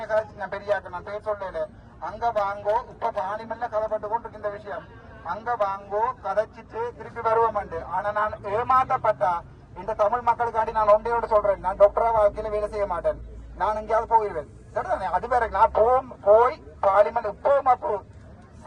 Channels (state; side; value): identical; both; correlation 1.00